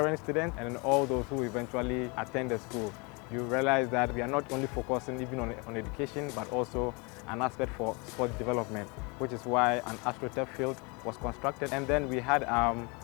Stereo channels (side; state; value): right; quieter; 30.0 dB